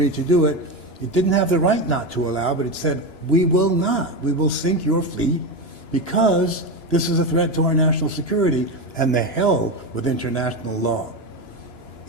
to do it, it didn't have the right not to allow, but it said, we will not. We will sink your fleet because this is a threat to our national security, and the hell with international law.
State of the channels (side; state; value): right; late; 2.9 ms